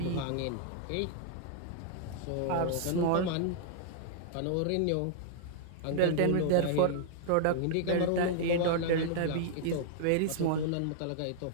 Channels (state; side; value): different; both; correlation -0.01